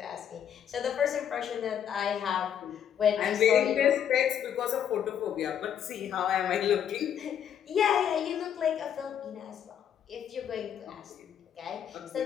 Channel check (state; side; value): quieter; right; 9.1 dB